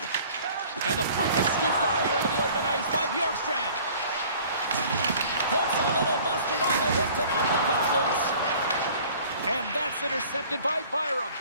And the puck is scooped up here into the open ice by Bjorkstrand. Puts a little mustard on the hit to knock the puck loose. And that's intercepted by Byram.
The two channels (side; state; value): both; inverted; correlation -0.49